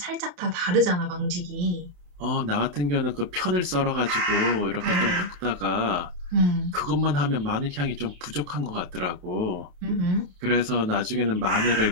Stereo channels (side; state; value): left; late; 28 ms